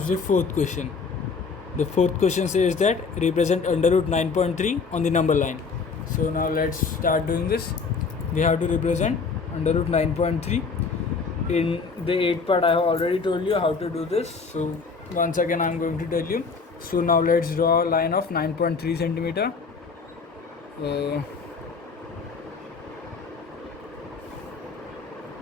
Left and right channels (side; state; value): right; quieter; 4.9 dB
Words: the fourth question. The fourth question says that represent under root 9.3 on the number line. So now let's start doing this. We have to represent under root 9.3. In the 8th part, I have already told you how to do this. So once again I'm going to tell you. So now let's draw a line of 9.3 centimeter.